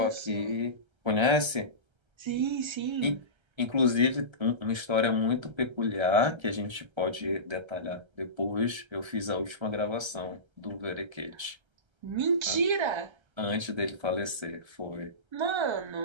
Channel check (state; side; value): late; left; 1.3 ms